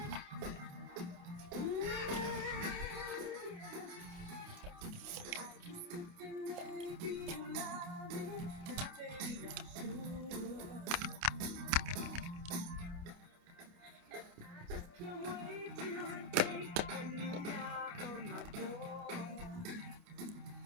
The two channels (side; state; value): left; late; 28 ms